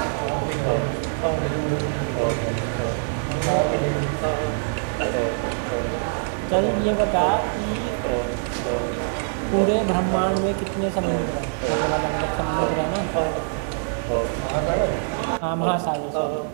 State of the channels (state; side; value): silent; left; 63 dB below the other